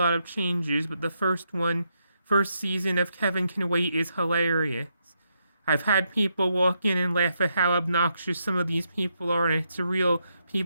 of changes, but the first season of Kevin Can Wait is hilarious. I've had people walk in and laugh at how obnoxious some of these people are, and it's a real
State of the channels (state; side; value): inverted; both; correlation -0.80